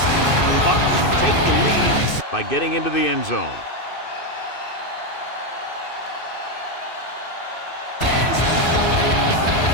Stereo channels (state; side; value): late; right; 2.6 ms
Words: Bucs can take the lead by getting into the end zone.